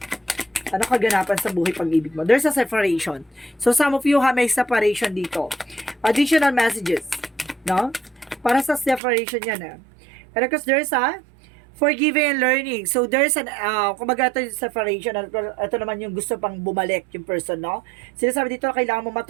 Ano kaganapan sa buhay pag-ibig mo? There's a separation. So some of you may separation dito. Additional messages, no? Para sa separation yan, Pero because there's a forgiving and learning. So, there's an, kumbaga ito yung separation. Ito naman yung gusto pang bumalik yung person, no? Sinasabi dito, kailangan mo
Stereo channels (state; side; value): drops out; left; at 9.0 s